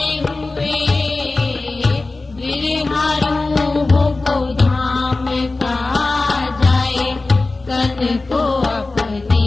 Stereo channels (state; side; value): quieter; right; 3.4 dB